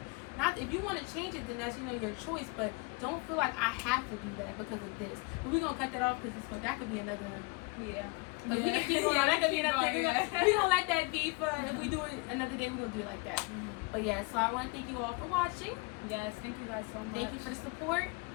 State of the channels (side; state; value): right; quieter; 27.7 dB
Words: Not if you want to change it, then that's, you know, your choice. But don't feel like I have to do that because of this. But we're gonna cut that off because that could be another. Yeah. But we can keep going. That could be another thing. We're gonna let that be. For if we do it another day, we're gonna do it like that. But yeah, so I want to thank you all for watching. Yes, thank you guys so much. Thank you for the support.